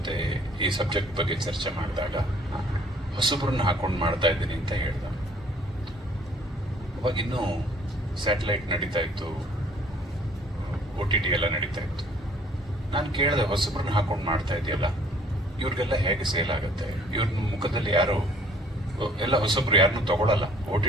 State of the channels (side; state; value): both; normal; correlation 0.57